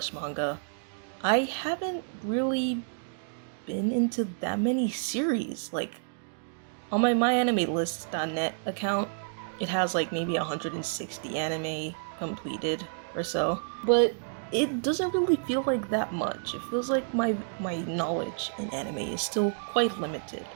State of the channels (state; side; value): silent; left; digital silence